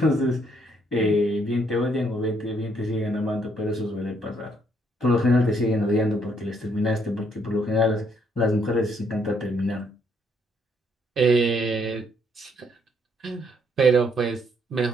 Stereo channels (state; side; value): normal; both; correlation 0.70